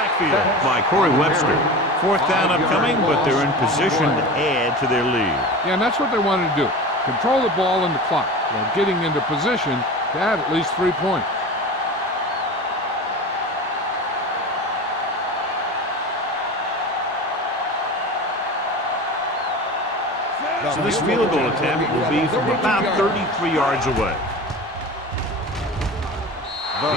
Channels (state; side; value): normal; both; correlation 0.32